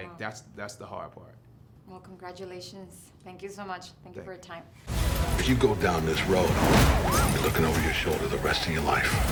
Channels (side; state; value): both; identical; correlation 1.00